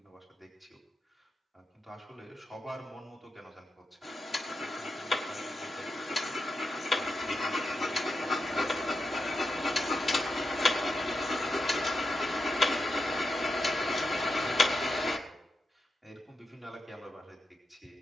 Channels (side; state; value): both; normal; correlation 0.88